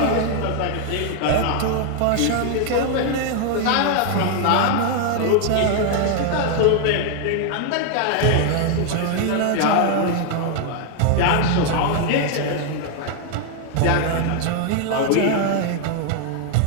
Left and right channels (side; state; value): both; different; correlation 0.00